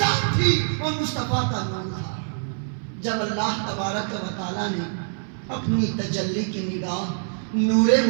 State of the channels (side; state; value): left; silent; 58 dB below the other